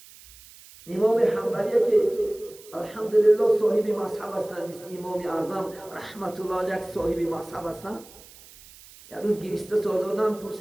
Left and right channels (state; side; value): noise; right; hiss, 21 dB below the sound